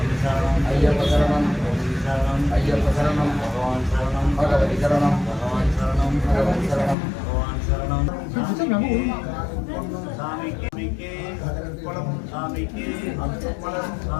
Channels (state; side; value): drops out; right; at 7.0 s